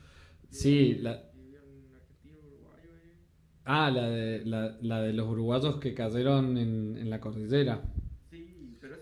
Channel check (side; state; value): both; identical; correlation 1.00